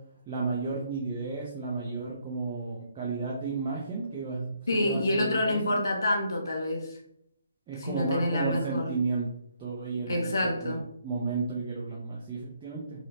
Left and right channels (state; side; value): inverted; both; correlation -0.71